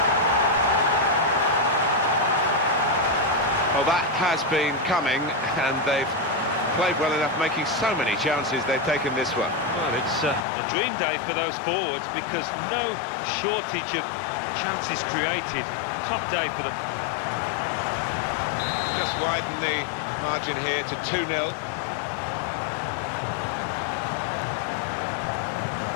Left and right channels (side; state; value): right; drops out; at 10.5 s